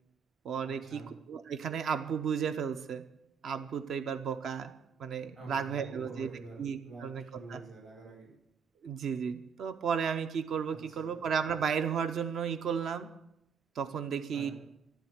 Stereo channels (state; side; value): quieter; left; 6.6 dB